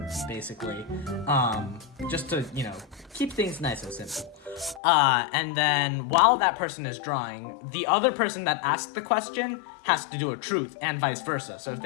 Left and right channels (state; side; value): drops out; right; at 4.8 s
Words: basically. Just to, keep things nice and simple. And then while that person is drawing, the other person that asked the question has to do a truth, and vice versa. So if